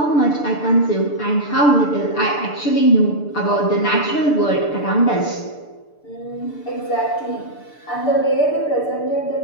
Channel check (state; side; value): late; right; 6.8 ms